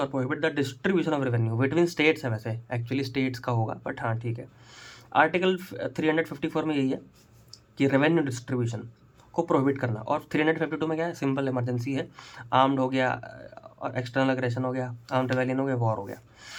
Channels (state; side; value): identical; both; correlation 1.00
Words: और prohibit the distribution of revenue between states है, वैसे एक्चुअली स्टेट्स का होगा, बट हाँ ठीक है। आर्टिकल 354 में यही है कि रेवेन्यू डिस्ट्रीब्यूशन को प्रोहिबिट करना, और 352 में क्या है, सिंपल इमरजेंसी है, आर्म्ड हो गया और एक्सटर्नल एग्रेशन हो गया, आर्म्ड रेवेलियन हो गया, वॉर हो गया,